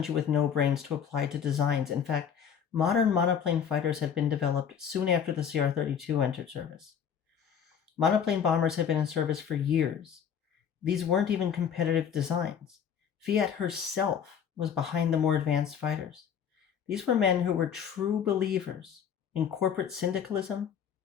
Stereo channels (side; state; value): right; quieter; 7.9 dB